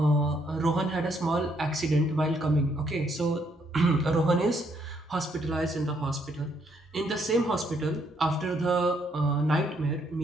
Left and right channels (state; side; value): normal; both; correlation 0.71